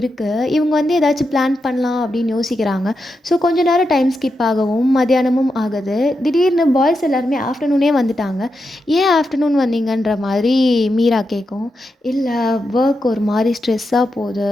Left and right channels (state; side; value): normal; both; correlation 0.87